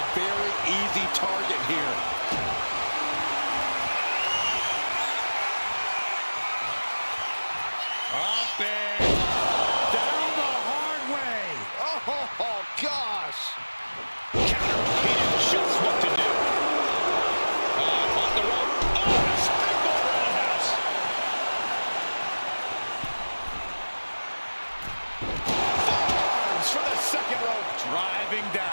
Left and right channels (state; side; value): inverted; both; correlation -1.00